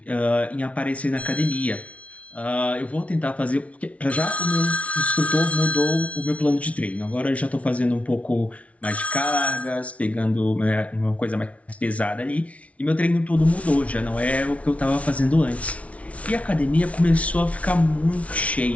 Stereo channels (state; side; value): late; right; 0.065 ms